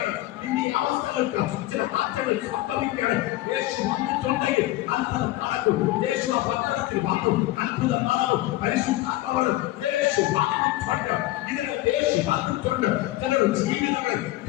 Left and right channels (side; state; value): right; quieter; 16.8 dB